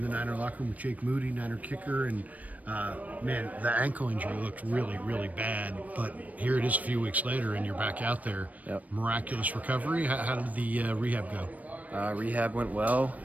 the Niner locker room with Jake Moody, Niner kicker, and man, the ankle injury looked really, really bad. But here it is a few weeks later, and you're back out there. Yep. Miraculous recovery. How did the rehab go? Rehab went well.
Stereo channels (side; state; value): left; late; 0.072 ms